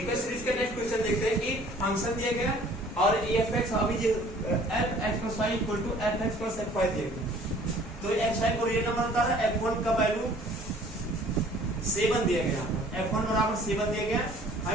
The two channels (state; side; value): normal; both; correlation 0.53